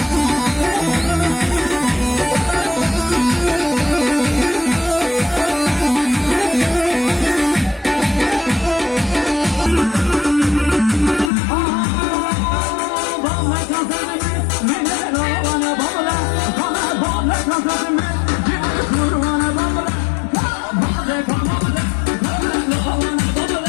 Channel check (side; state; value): right; drops out; at 11.3 s